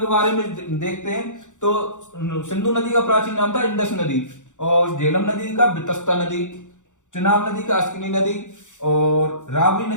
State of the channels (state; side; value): late; right; 0.86 ms